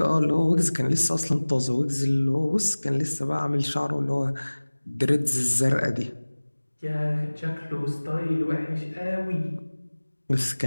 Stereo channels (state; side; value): inverted; both; correlation -1.00